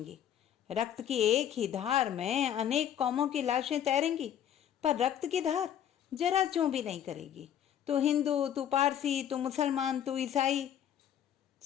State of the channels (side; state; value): right; quieter; 9.9 dB